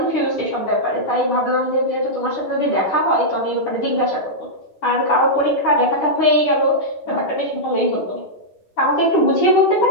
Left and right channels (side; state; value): right; late; 10 ms